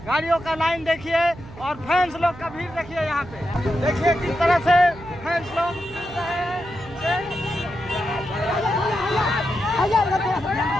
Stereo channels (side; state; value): right; noise; hum, 17 dB below the sound